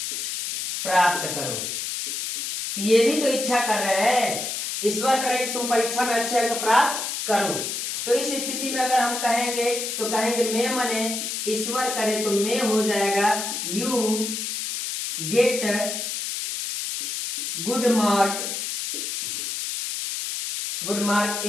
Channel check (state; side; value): noise; left; hiss, 4 dB below the sound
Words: प्राप्त करो। तो ये भी तो इच्छा कर रहे हैं, ईश्वर करे कि तुम परीक्षा में अच्छे अंक प्राप्त करो। तो इस स्थिति में अगर हम कहेंगे तो कहेंगे मैं मने ईश्वर करे तो मैं हो जाएगा you get good mark